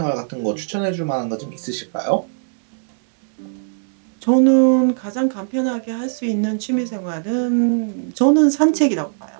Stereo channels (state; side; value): silent; left; digital silence